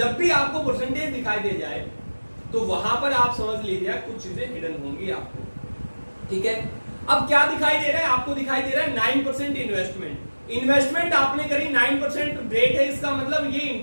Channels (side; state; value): both; inverted; correlation -1.00